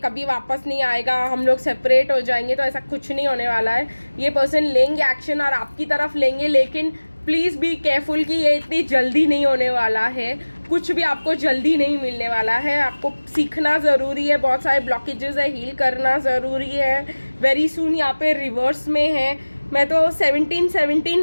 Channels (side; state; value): both; inverted; correlation -1.00